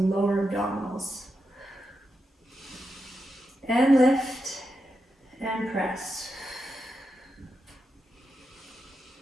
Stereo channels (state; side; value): normal; both; correlation 0.87